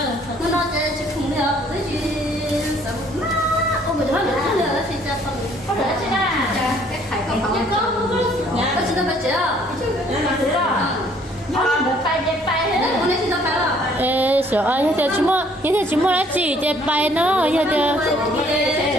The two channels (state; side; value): normal; both; correlation 0.61